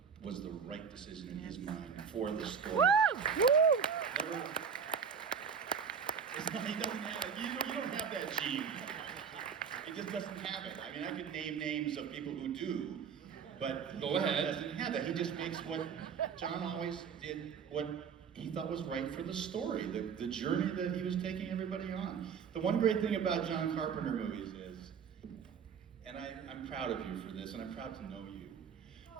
was the right decision in his mind for the story. Never, it's not, he doesn't have it. You don't have that gene. He just doesn't have it. I mean, I could name names of people who do, but Go ahead. He doesn't have that. He just makes what John always did, what he thought was right for the story, the journey that he was taking everybody on. The one great thing about John Carpenter movies is, and I'm proud of you for this, and I'm proud to know you.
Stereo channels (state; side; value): quieter; left; 6.6 dB